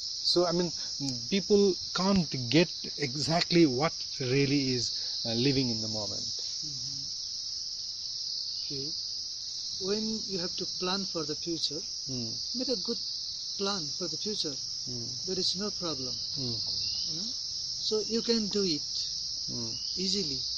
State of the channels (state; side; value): noise; right; rumble, 27 dB below the sound